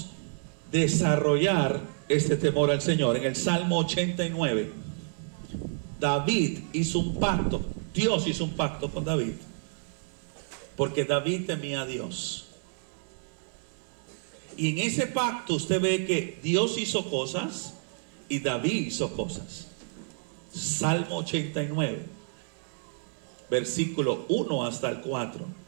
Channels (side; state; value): left; silent; 58 dB below the other